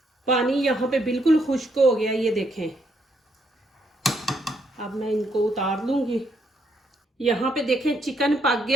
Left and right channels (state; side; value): normal; both; correlation 0.74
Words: पानी यहाँ पे बिल्कुल खुश्क हो गया, ये देखें। अब मैं इनको उतार लूंगी। यहाँ पे देखें चिकन पक